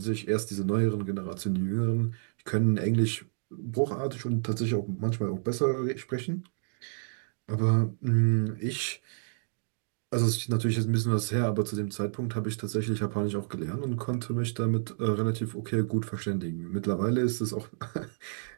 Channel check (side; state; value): left; silent; digital silence